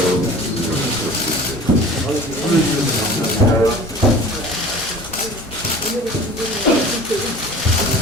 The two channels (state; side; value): normal; both; correlation 0.42